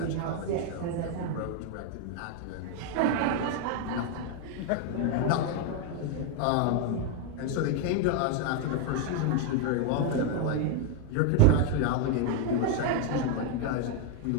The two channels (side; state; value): both; different; correlation 0.01